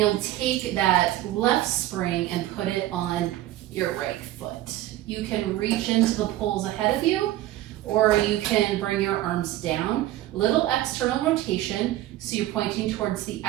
take that left spring and put it on your right foot. You can reach into the poles ahead of you, or you can bring your arms down. Little external rotation, so you're pointing towards the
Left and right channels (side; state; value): left; quieter; 14.7 dB